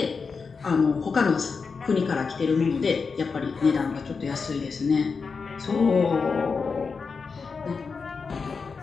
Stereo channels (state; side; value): quieter; right; 5.0 dB